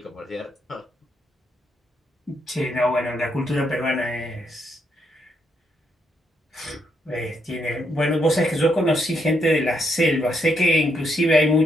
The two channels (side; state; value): both; normal; correlation 0.77